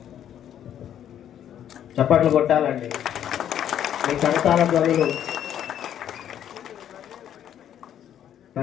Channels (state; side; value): quieter; right; 10.2 dB